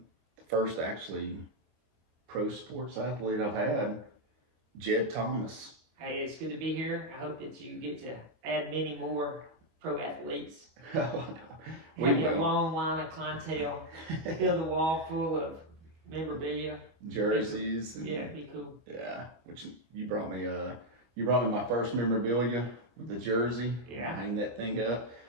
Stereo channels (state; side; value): late; left; 25 ms